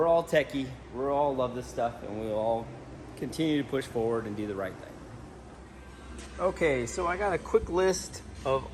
all techie. We all love this stuff, and we'll all continue to push forward and do the right thing. Okay, so I got a quick list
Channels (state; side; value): identical; both; correlation 1.00